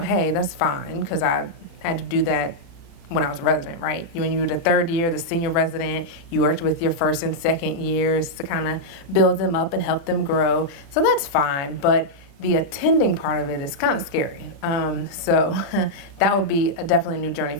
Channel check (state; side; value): late; right; 36 ms